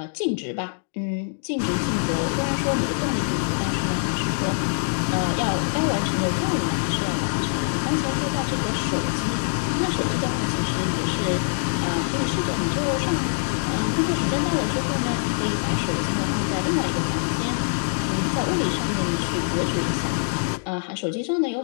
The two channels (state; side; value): silent; right; digital silence